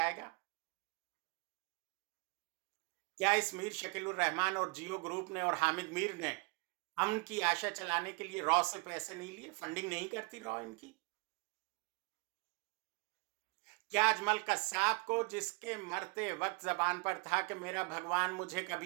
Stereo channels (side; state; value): left; quieter; 32.1 dB